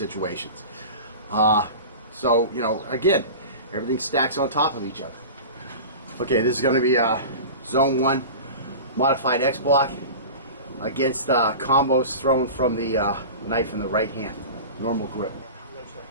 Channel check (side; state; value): both; inverted; correlation -0.33